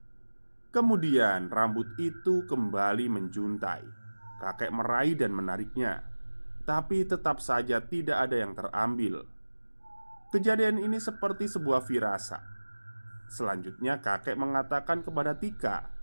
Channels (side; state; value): both; inverted; correlation -1.00